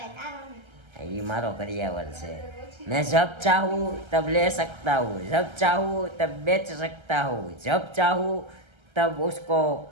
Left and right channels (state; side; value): late; left; 1.3 ms